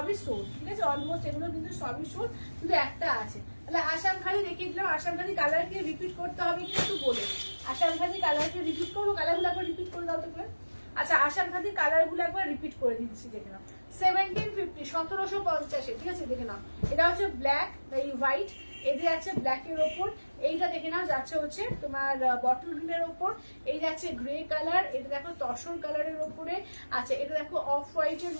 সোল্ড, ঠিক আছে, অলমোস্ট এগুলো কিন্তু সবই সোল্ড, শুধু একটা আছে। তাহলে আসাম খালি দেখিয়ে দিলাম, আসাম খালি কালারকে রিপিট করতে হবে কিন্তু বলে, আসাম খালি কালারকে রিপিট করবো, কালারগুলো একবার রিপিট করে দাও তো করে। আচ্ছা আসাম খালি কালারগুলো একবার রিপিট করে দিচ্ছি, দেখে নাও 1750, 1750, ঠিক আছে, দেখে নাও এটা হচ্ছে ব্ল্যাক, এই হোয়াইট, এটা যাচ্ছে ব্ল্যাকের ওপর, এইটা দেখে নাও যাচ্ছে হচ্ছে তোমার বটল গ্রিনের ওপর, এই যাচ্ছে গ্রে কালার, এটা দেখো তসর কালারের ওপরে, আচ্ছা এটা দেখো অফ হোয়াইটের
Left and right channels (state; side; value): inverted; both; correlation -1.00